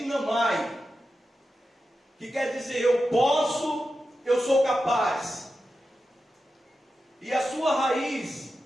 que quer dizer eu posso, eu sou capaz. E a sua raiz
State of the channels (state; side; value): normal; both; correlation 0.91